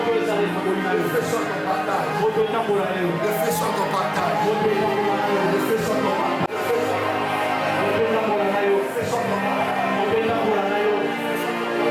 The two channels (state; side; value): identical; both; correlation 1.00